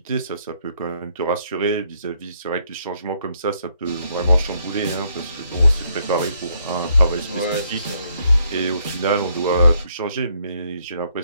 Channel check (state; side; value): inverted; both; correlation -0.71